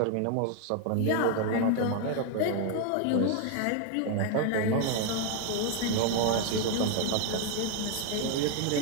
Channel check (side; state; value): both; different; correlation 0.01